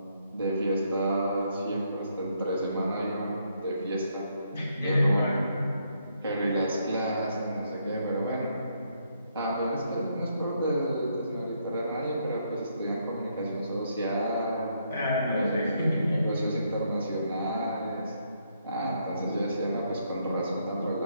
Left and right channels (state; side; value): inverted; both; correlation -0.74